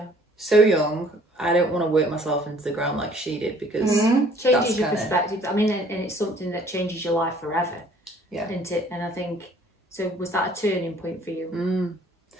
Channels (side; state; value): both; normal; correlation 0.57